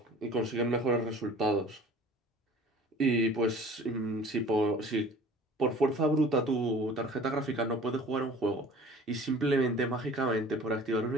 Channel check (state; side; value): normal; both; correlation 0.46